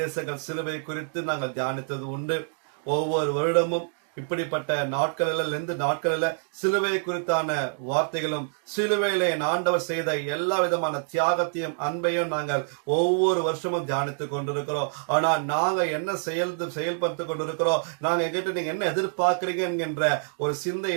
சிலுவை குறித்து நாங்கள் தியானித்தது உண்டு. ஒவ்வொரு வருடமும் இப்படிப்பட்ட நாட்களில் சிலுவை குறித்தான வார்த்தைகளும் சிலுவையில ஆண்டவர் செய்த எல்லா விதமான தியாகத்தையும் அன்பையும் நாங்கள் ஒவ்வொரு வருஷமும் தியானித்துக் கொண்டிருக்கிறோம். ஆனா நாங்க என்ன செயல்படுத்தி கொண்டிருக்கிறோம், நாங்க எங்கிட்ட நீங்க என்ன எதிர்பார்க்கிறீங்க என்கின்ற ஒரு சிந்தை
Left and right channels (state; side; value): silent; left; digital silence